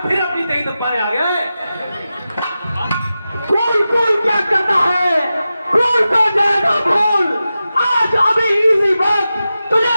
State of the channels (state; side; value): inverted; both; correlation -0.93